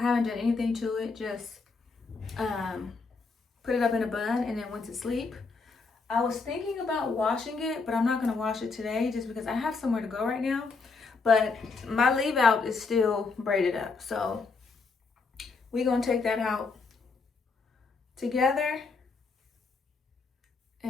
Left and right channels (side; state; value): right; quieter; 4.3 dB